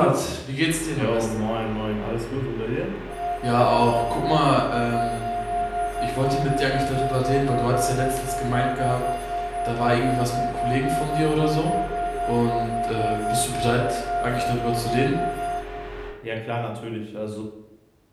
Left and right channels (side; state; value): both; identical; correlation 1.00